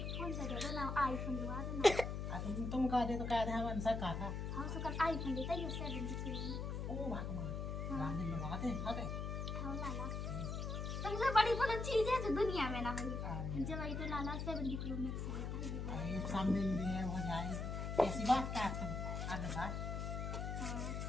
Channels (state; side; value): noise; left; hum, 3 dB below the sound